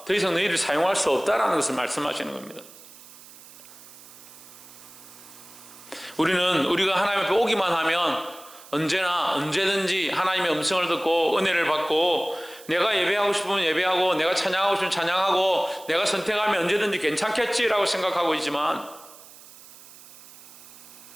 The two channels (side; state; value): right; noise; hiss, 20 dB below the sound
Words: 더 이상 너희를 사용할 수 없다라는 것을 말씀하시는 겁니다. 우리가 하나님 앞에 오기만 하면 언제든지 하나님의 음성을 듣고 은혜를 받고 내가 예배하고 싶으면 예배하고 내가 찬양하고 싶으면 찬양하고 내가 선택하면 언제든지 괜찮겠지라고 생각하고 있지만